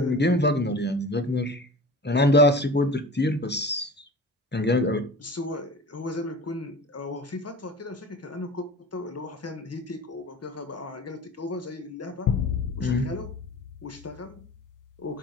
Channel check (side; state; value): both; normal; correlation 0.37